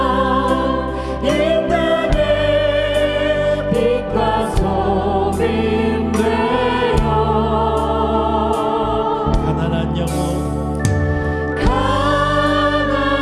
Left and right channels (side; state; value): both; identical; correlation 1.00